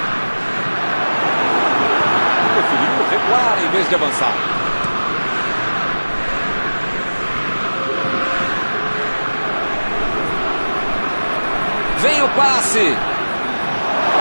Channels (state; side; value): inverted; both; correlation -1.00